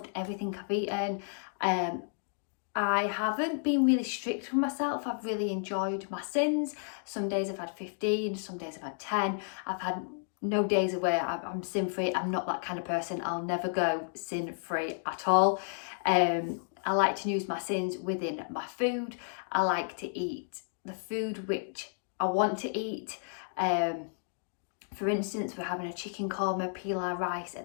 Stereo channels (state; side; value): silent; right; digital silence